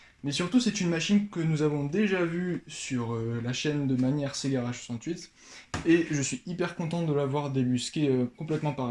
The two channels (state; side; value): identical; both; correlation 1.00